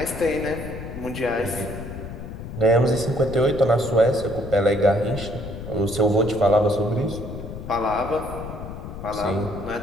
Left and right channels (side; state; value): left; noise; rumble, 10 dB below the sound